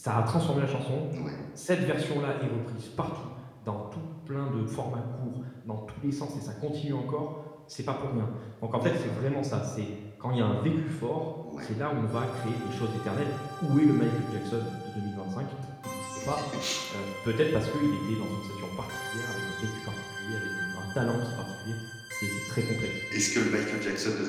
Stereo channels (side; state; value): both; identical; correlation 1.00